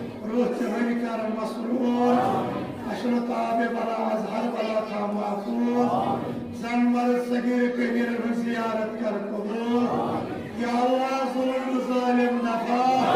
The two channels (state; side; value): identical; both; correlation 1.00